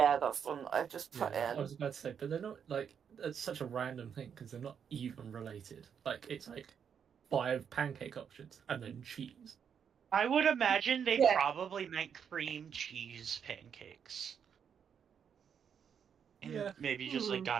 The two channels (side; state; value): left; quieter; 7.6 dB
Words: that's the one that I've just put Yeah, in. I was about to say, but they're not like it's such a random thing because they're not even related. Like it's like 5 pancake options and then cheese. I would imagine they Yeah. probably meant cream cheese pancakes. And Yeah. maybe just like